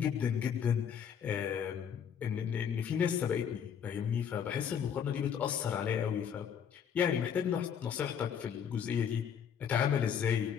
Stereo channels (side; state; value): right; quieter; 8.0 dB